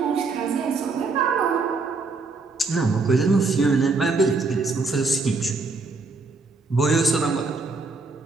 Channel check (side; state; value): left; quieter; 3.9 dB